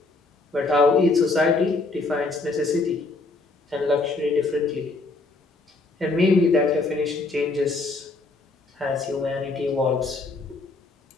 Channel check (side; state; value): right; quieter; 3.4 dB